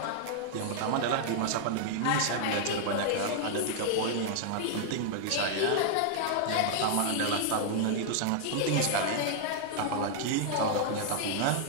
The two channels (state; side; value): different; both; correlation -0.01